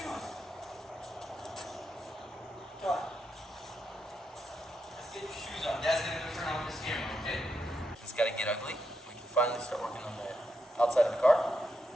Come on. Let's get your shoes on. Dad's gonna go turn off this camera, okay? It's gotta get ugly. We can finally start working on the outside of the car.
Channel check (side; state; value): both; normal; correlation 0.83